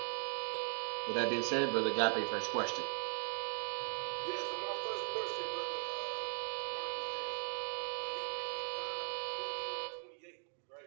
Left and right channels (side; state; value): left; silent; 52 dB below the other